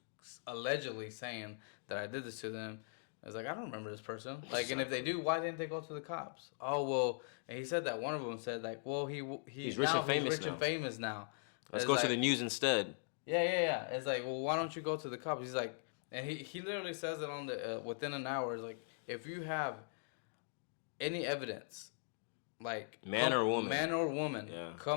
allegedly saying that I did this to them? I was like, I don't remember this person. Like, and if they do, why didn't they go to the cops? Oh, well, and he said that one of them said, like, well, he's rich and famous now. Let's go to the news instead. Yeah. It's like, well, why don't you go to the cops? He's like, and he literally says it on the within an hour. It's like, if you have any evidence, like man or woman,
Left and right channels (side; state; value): right; silent; digital silence